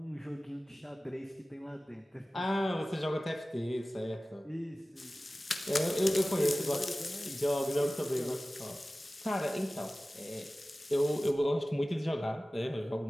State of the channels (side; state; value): both; normal; correlation 0.97